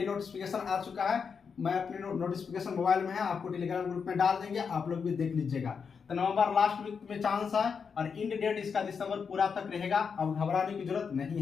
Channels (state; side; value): quieter; right; 6.0 dB